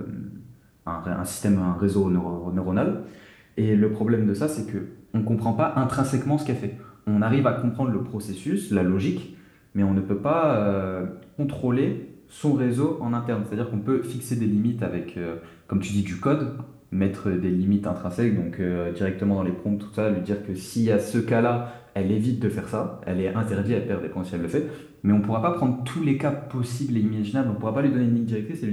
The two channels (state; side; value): identical; both; correlation 1.00